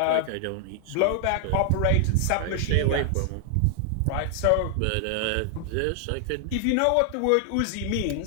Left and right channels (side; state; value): both; different; correlation 0.00